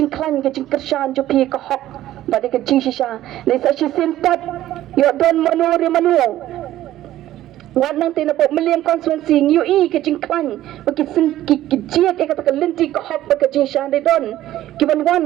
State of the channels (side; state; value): left; quieter; 13.9 dB